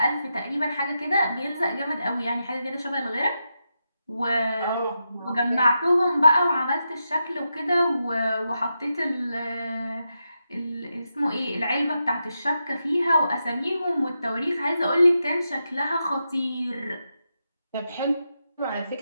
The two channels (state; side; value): inverted; both; correlation -0.87